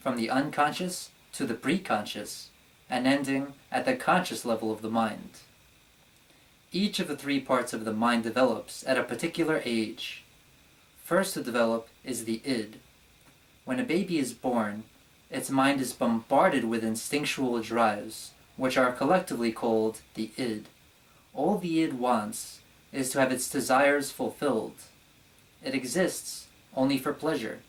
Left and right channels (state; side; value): identical; both; correlation 1.00